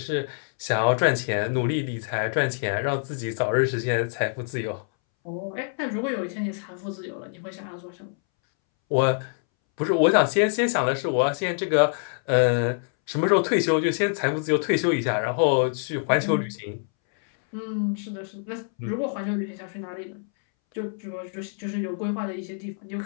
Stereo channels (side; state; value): right; silent; 61 dB below the other